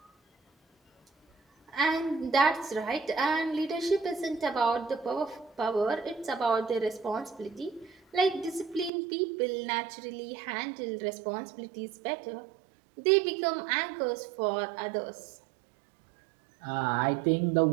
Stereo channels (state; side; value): drops out; left; at 8.9 s